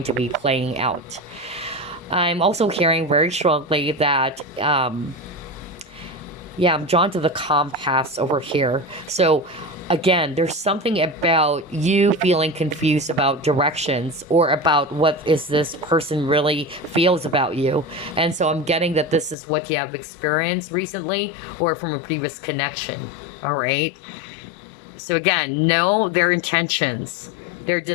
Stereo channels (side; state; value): right; drops out; at 19.4 s